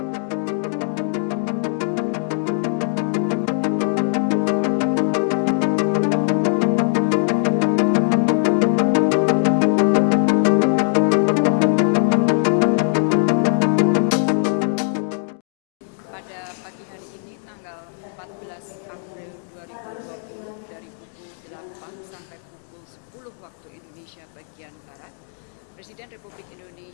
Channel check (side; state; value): right; silent; digital silence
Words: pagi hari ini, tanggal 14 April 2020, dari pukul 8 sampai pukul 10 waktu Indonesia bagian Barat, Presiden Republik